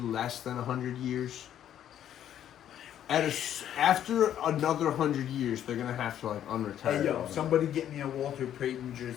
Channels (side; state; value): right; quieter; 10.6 dB